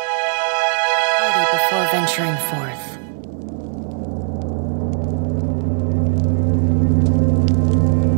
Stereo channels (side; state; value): left; silent; 59 dB below the other